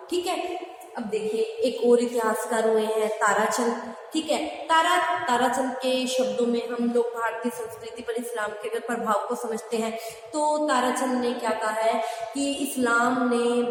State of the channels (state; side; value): identical; both; correlation 1.00